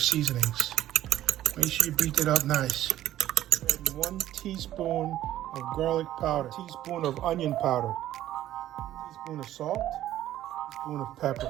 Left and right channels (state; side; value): quieter; left; 13.2 dB